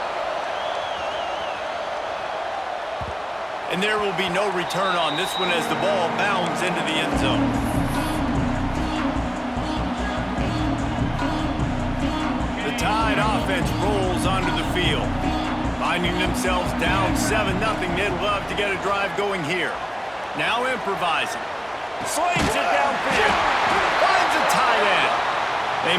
And there will be no return on this one as the ball bounds into the end zone. The Tide offense rolls onto the field. Finding themselves down 7-0, they'd love to get a drive going here. Now improvising. Slings it downfield. Finds a tight end. They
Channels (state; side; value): identical; both; correlation 1.00